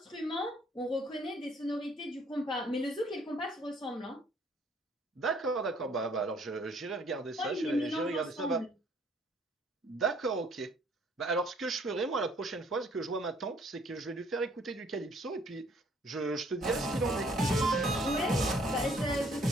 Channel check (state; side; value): normal; both; correlation 0.61